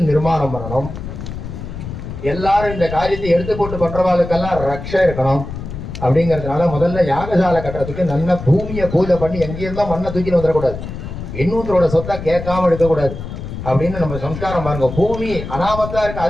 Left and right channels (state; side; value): noise; left; rumble, 9 dB below the sound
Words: நிர்மாணம் பண்ணணும், எல்லாரும் இந்த காரியத்தை எடுத்து போட்டு பண்றவாளுக்கெல்லாம் ரக்ஷை இருக்கணும். அப்படிங்கிறதுனால முதல்ல யாகசாலை கட்டுறதுக்கு நல்ல பூமியை பூஜை பண்ணி எங்கேயிருந்தோம் மண்ணை தூக்கின்னு வந்துடக்கூடாது, இன்னொருத்தரோட சொத்தை கேட்காம எடுக்கக்கூடாது அப்படின்னு நம்ம சம்ஸ்காரம் பாருங்க. பூமி அனாமத்தா இருக்கு,